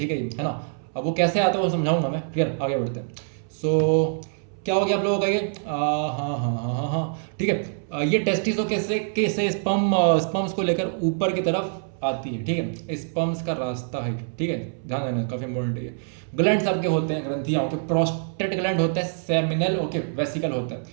है ना। अब वो कैसे आता है वो समझाऊंगा मैं, क्लियर। आगे बढ़ते हैं। सो क्या हो गया आप लोगों का ये, हाँ, ठीक है, ये टेस्टिस कैसे स्पर्म्स को लेकर ऊपर की तरफ आती है, ठीक है, स्पर्म्स का रास्ता है, ठीक है, ध्यान देना, काफी इंपॉर्टेंट है ये। ग्लैंड्स आपके होते हैं, ग्रंथियां, ओके, प्रोस्टेट ग्लैंड होता है, सेमिनल, ओके, वेसिकल होता है,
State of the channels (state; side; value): silent; left; 62 dB below the other